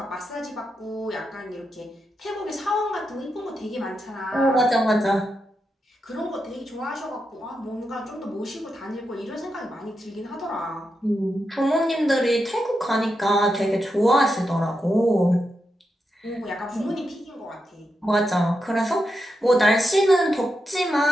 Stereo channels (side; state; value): both; normal; correlation 0.86